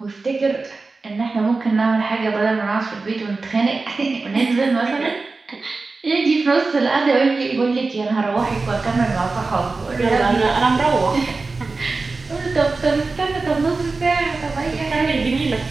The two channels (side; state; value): left; quieter; 3.8 dB